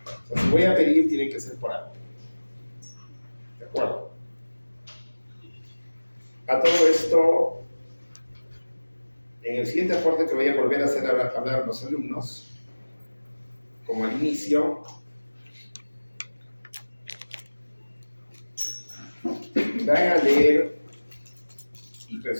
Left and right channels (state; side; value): inverted; both; correlation -1.00